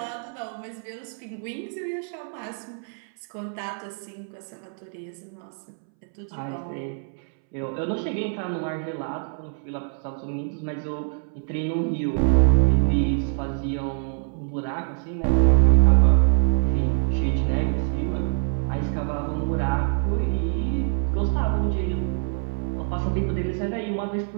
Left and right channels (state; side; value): silent; left; 62 dB below the other